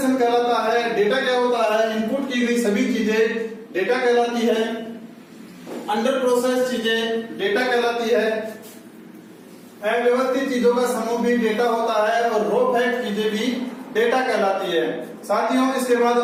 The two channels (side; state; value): both; identical; correlation 1.00